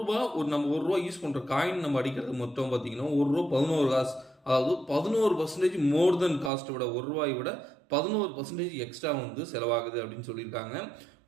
ரூபா யூஸ் பண்ணுற காயின் நம்ம அடிக்கிறது மொத்தம் பார்த்தீங்கன்னா ₹1 11 காசு. அதாவது 11% மோர் தென் காஸ்ட்டை விட ₹1 விட 11% எக்ஸ்ட்ரா செலவாகுது அப்படின்னு சொல்லியிருக்காங்க.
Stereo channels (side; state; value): left; drops out; at 6.5 s